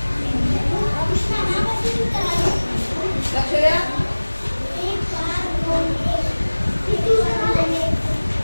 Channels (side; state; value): both; inverted; correlation -1.00